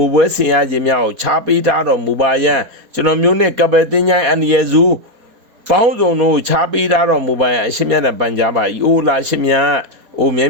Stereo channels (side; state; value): left; late; 4.1 ms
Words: ုပွဲဆင်ရခြင်းများကိုခြားပေးထားတော်မူပါယံကျွန်တော်မျိုးနှင့်ကပယ်တင်ញိုင်းအန္တရာယ်စုပေါင်းစုံတို့ခြားပေးထားတော်မူပါယံအရှင်မြတ်နဲ့ပန်ကြားပါ၏အိုလာရှင်မြတ်အိုမြဲ